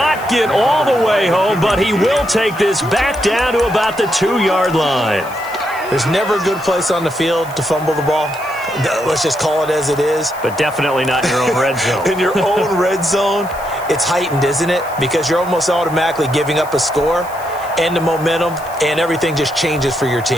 get all the way home, but he will take this back down to about the 2-yard line. There's never a good place on the field to fumble the ball. Let's just call it as it is. But definitely not in your own red zone. In your own red zone, it's heightened, isn't it? Because you're almost automatically giving up a score and the momentum, and everything just changes for your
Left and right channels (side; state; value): left; noise; hiss, 20 dB below the sound